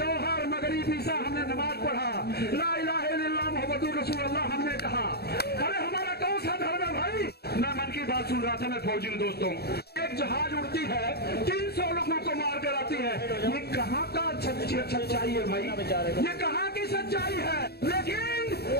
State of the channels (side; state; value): right; late; 0.47 ms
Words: मगरिब ईसा हमने नमाज पढ़ा, ला इलाहा इल्लल्लाह मुहम्मदुर रसूलुल्लाह हमने कहा। अरे हमारा कौन सा धर्म है भाई? मैं मन की बात सुन रहा था, मैं फौजी हूं दोस्तों। एक जहाज उड़ती है, 300 लोगों को मार कर आती है। ये कहाँ का सच्चाई है भाई? ये कहाँ की सच्चाई है? लेकिन